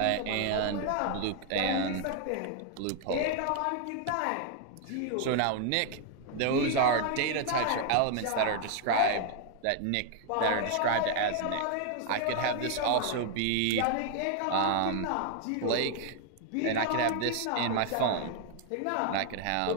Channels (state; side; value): different; both; correlation 0.00